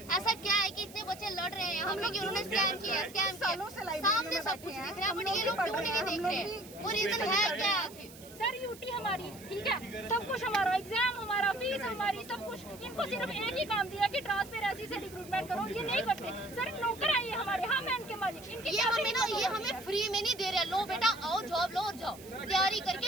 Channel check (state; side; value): noise; right; hiss, 19 dB below the sound